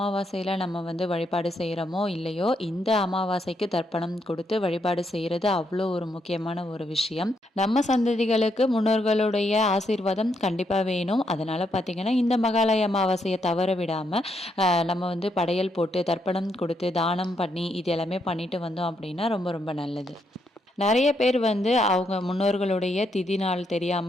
நம்ம வந்து வழிபாடு செய்றோமோ இல்லையோ, இந்த அமாவாசைக்கு தர்ப்பணம் கொடுத்து வழிபாடு செய்றது அவ்வளோ ஒரு முக்கியமான ஒரு விஷயம். நம்ம சந்ததிகளுக்கு முன்னோர்களுடைய ஆசீர்வாதம் கண்டிப்பா வேணும். அதனால பார்த்தீங்கன்னா, இந்த மகாலய அமாவாசைய தவற விடாம, நம்ம வந்து படையல் போட்டு, தர்ப்பணம் கொடுத்து, தானம் பண்ணி, இது எல்லாமே பண்ணிட்டு வந்தோம் அப்படின்னா ரொம்ப ரொம்ப நல்லது. நெறைய பேர் வந்து அவங்க முன்னோர்களுடைய திதி நாள்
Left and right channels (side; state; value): both; normal; correlation 0.77